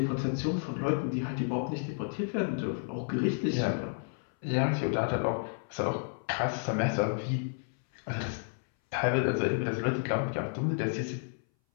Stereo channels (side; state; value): right; silent; 57 dB below the other